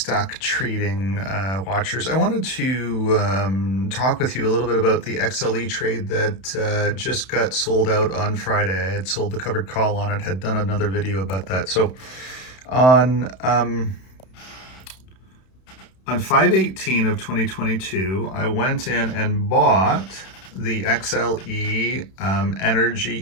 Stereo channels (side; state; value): right; late; 31 ms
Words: trading watchers. I wanted to talk with you a little bit about the XLE trade that just got sold out on Friday. I had sold the covered call on it, had done another video about that. So on 5/18 of 2022, I went in and bought the XLE Energy